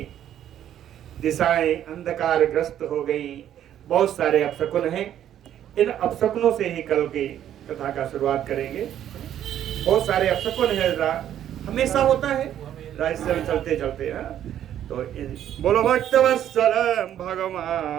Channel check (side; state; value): left; quieter; 10.8 dB